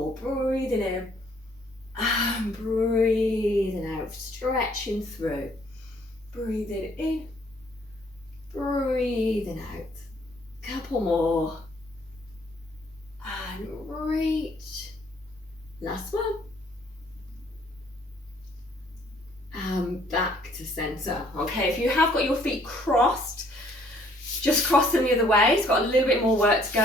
breathing in and breathing out, stretching through. Breathing in, breathing out. Couple more. And reach. Last one. And back to centre. Okay, if you have got your feet crossed, just cross them the other way. It's got a little bit more work to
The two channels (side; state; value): both; normal; correlation 0.62